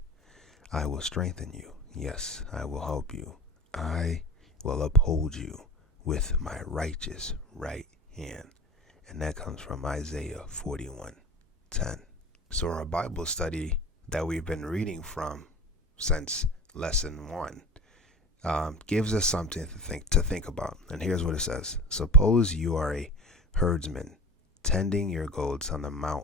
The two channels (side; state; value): both; normal; correlation 0.34